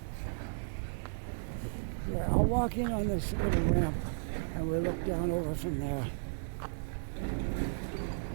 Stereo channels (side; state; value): left; silent; digital silence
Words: Yeah, I'll walk in on this little ramp and we'll look down over from there.